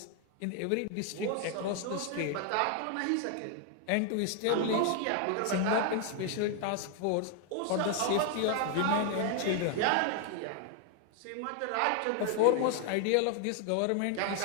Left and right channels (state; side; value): different; both; correlation 0.00